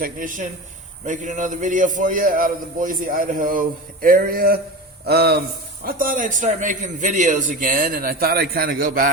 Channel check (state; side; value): normal; both; correlation 0.28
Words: making another video for you out of the Boise, Idaho area. I thought I'd start making videos again, and I thought I'd kind of go